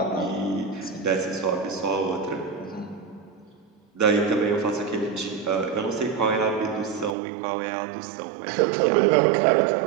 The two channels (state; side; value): drops out; left; at 7.2 s